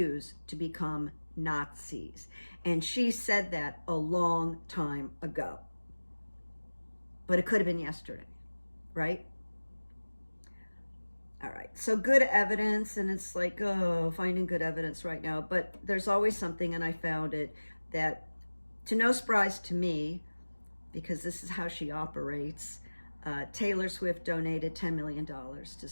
to become Nazis." And she said that a long time ago. But it could have been yesterday, right? All right, so good evidence, and it's like, oh, finding good evidence right now. But there's always something, and I found it, that to no surprise to me, because this is how she operates, Taylor Swift donated $10 million to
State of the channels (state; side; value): inverted; both; correlation -1.00